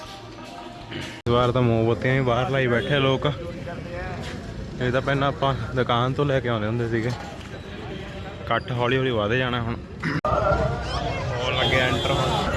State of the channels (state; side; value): identical; both; correlation 1.00